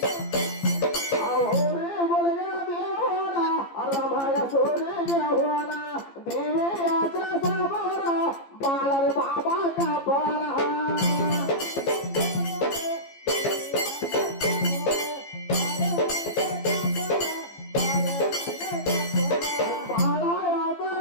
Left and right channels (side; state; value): right; late; 15 ms